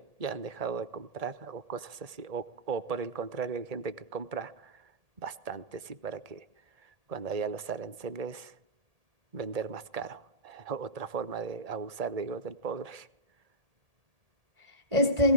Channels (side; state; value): left; late; 1.8 ms